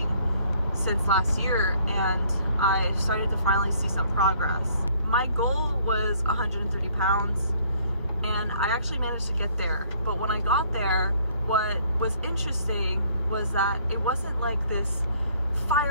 since last year, and I started to finally see some progress. My goal was 130 pounds, and I actually managed to get there. But when I got there, what was interesting was that it wasn't like this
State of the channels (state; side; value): inverted; both; correlation -0.61